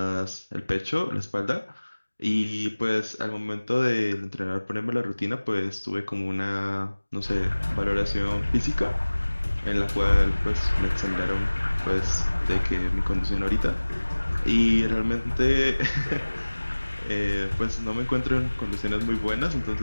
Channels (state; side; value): inverted; both; correlation -1.00